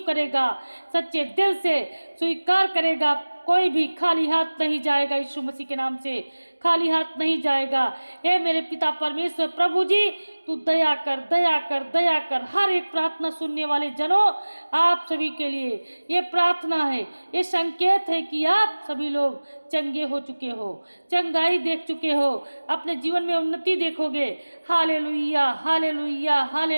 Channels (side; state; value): both; inverted; correlation -1.00